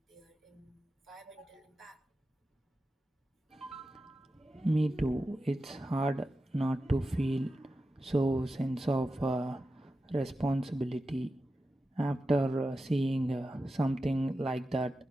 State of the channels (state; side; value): normal; both; correlation 0.92